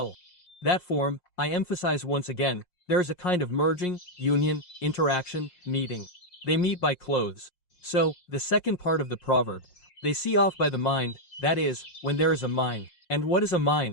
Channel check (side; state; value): right; late; 5.6 ms